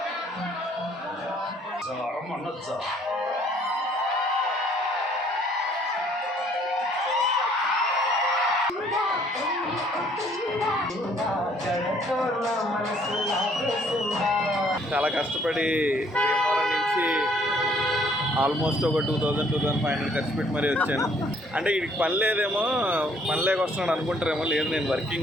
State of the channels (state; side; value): normal; both; correlation 0.62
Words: అనొచ్చా? చాలా కష్టపడి భీమవరం నుంచి ఆల్మోస్ట్ ఒక 2,000-2,500 ఖర్చు పెట్టి మరీ వచ్చాను. అంటే వీడికి పని లేదేమో, పని లేక వస్తున్నాడు అనుకుంటారేమో. లేదు, నేను